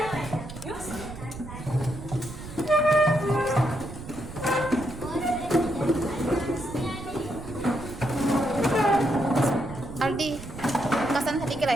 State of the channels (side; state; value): right; noise; rumble, 12 dB below the sound